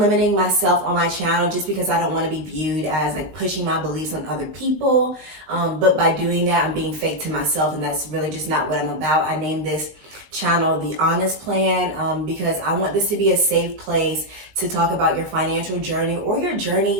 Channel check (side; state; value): left; late; 19 ms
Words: myself on my channel just because I don't want to be viewed as like pushing my beliefs on other people. But by doing that, I'm being fake to myself, and that's really just not what I'm about. I named this channel The Honest Plan because I want this to be a safe place to talk about your financial journey or your